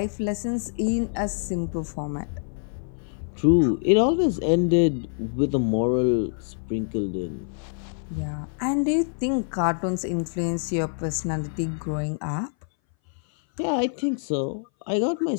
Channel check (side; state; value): right; silent; 60 dB below the other